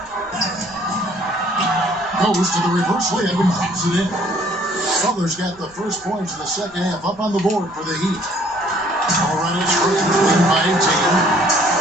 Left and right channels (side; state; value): both; normal; correlation 0.59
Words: Goes to the reverse layup and drops it in. Butler's got the first points of the second half up on the board for the Heat. Colorado Springs leading by 18.